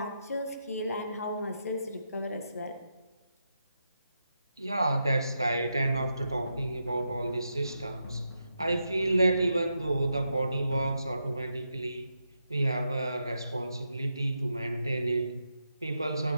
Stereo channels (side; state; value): both; inverted; correlation -0.85